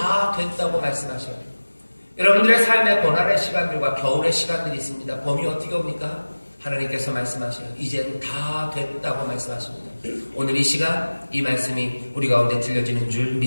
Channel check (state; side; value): inverted; both; correlation -1.00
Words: 됐다고 말씀하셔요. 여러분들의 삶의 고난의 시간들과 겨울의 시간들이 있습니다. 봄이 어떻게 옵니까? 하나님께서 말씀하셔요. 이젠 다 됐다고 말씀하십니다. 오늘 이 시간 이 말씀이 우리 가운데 들려지는 줄